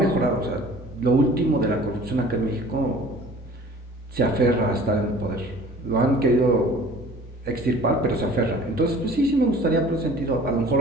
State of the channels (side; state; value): both; normal; correlation 0.48